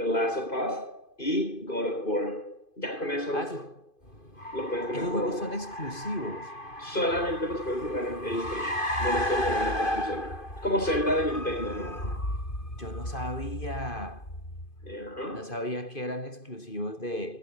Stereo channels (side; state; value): right; late; 2.5 ms